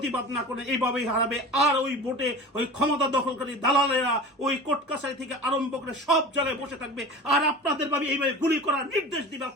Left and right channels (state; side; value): normal; both; correlation 0.35